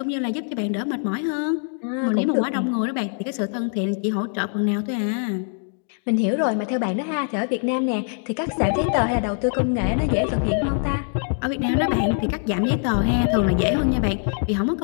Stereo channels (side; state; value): right; silent; 58 dB below the other